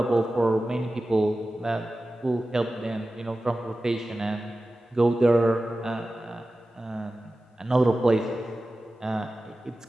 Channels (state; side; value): normal; both; correlation 0.95